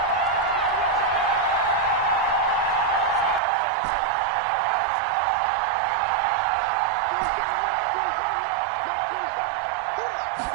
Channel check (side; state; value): left; drops out; at 3.4 s